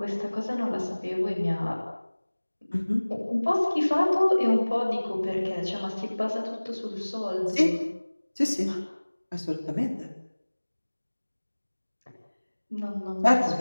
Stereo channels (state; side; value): inverted; both; correlation -1.00